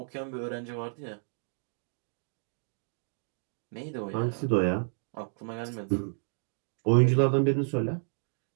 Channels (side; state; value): left; silent; 57 dB below the other